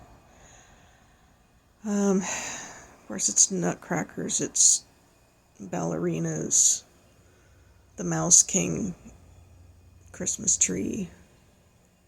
Of course, it's nutcrackers, it's ballerinas, the Mouse King Christmas tree,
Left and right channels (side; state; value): both; identical; correlation 1.00